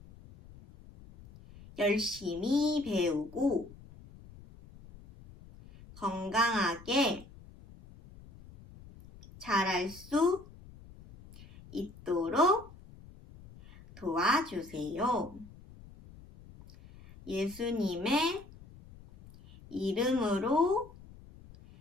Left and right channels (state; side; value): noise; left; rumble, 20 dB below the sound